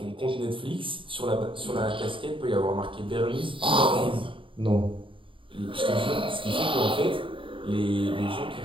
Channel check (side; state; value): left; late; 0.25 ms